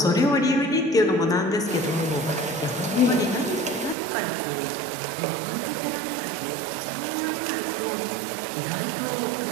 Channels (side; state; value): left; drops out; at 4.0 s